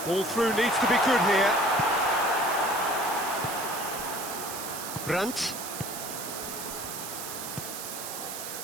Ball through needs to be good here. Brandt.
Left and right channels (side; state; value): right; noise; hiss, 7 dB below the sound